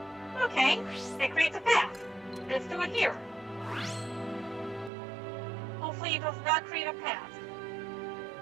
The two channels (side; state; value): left; drops out; at 4.9 s